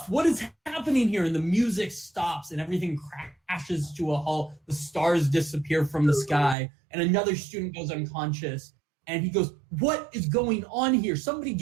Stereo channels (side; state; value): left; drops out; at 6.6 s